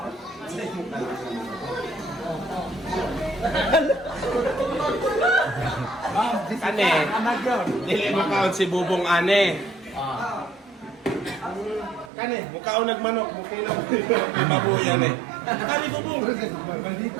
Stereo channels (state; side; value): drops out; left; at 12.1 s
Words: Kane. Dili mo kaon si Bubong ane. Kane, mukaon nagmanok, mukaon mabuyan eh. Kani Bubong.